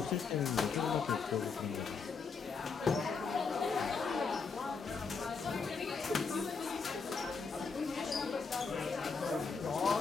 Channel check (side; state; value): right; quieter; 5.1 dB